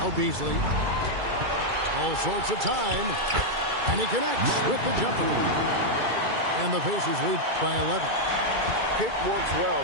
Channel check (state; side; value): late; left; 2.3 ms